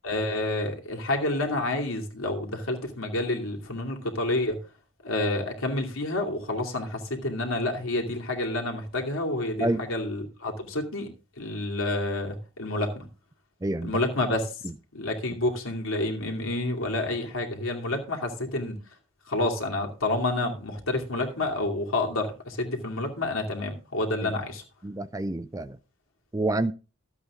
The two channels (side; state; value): both; normal; correlation 0.18